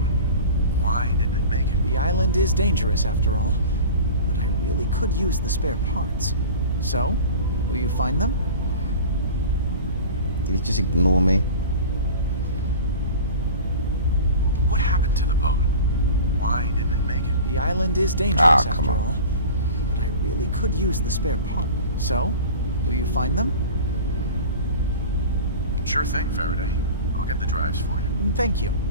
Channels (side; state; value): both; inverted; correlation -0.37